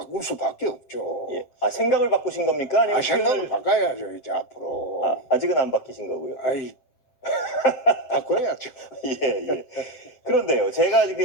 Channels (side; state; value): right; late; 7.9 ms